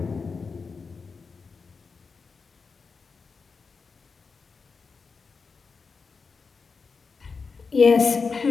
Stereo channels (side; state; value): right; quieter; 4.9 dB